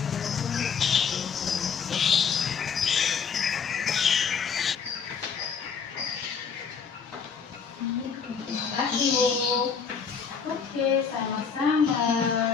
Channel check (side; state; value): right; quieter; 6.3 dB